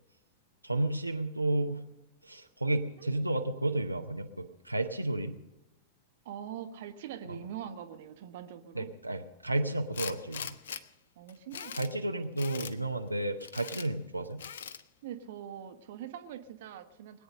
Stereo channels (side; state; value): both; inverted; correlation -0.84